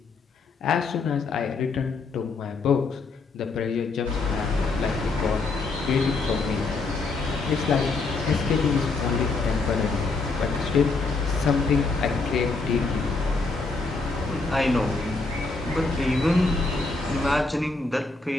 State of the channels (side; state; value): right; quieter; 3.9 dB